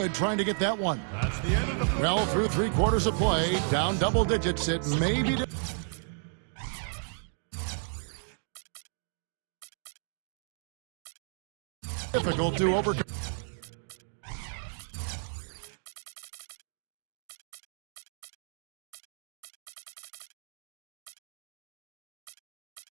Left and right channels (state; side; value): silent; left; digital silence